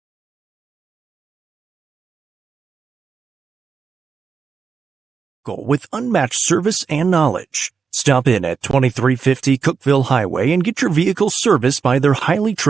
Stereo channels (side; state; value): left; quieter; 5.6 dB